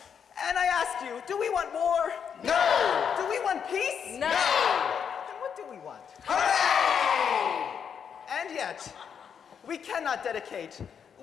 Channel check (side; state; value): right; quieter; 7.4 dB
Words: And I ask you, do we want war? No! Do we want peace? No! Then what do we want? Hooray! And yet, we cannot dedicate,